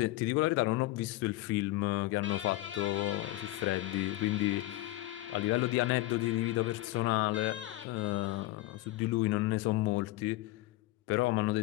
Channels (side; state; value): right; quieter; 17.5 dB